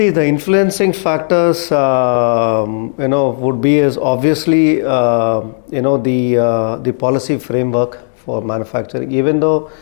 the influencing factors, would be is obviously, the policy framework for manufacturing. Even though,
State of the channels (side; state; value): right; silent; digital silence